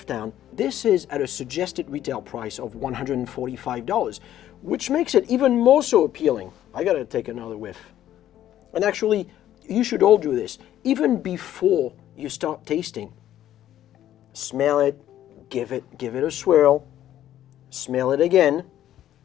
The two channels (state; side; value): quieter; right; 12.1 dB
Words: this is at a suggested retail price of $145, which makes it even more so appealing. I gotta take another whiff. And actually, you should all do this. Even before you start tasting, smell it, give it a swirl, smell it again,